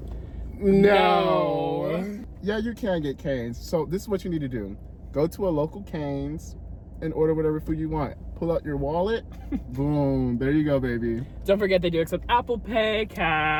No. Yeah, you can get canes. So this is what you need to do. Go to a local Cane's and order whatever food you want. Pull out your wallet. Boom. There you go, baby. Don't forget they do accept Apple Pay,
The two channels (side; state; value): both; identical; correlation 1.00